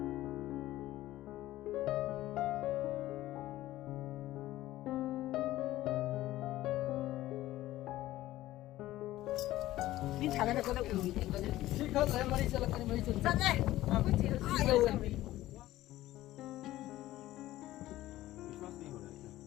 Đi thằng này có được ủi thì có được. Chị không lấy mà đi chơi là cái mấy chuyện. Chân này. Ai đâu rồi.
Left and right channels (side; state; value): right; quieter; 15.6 dB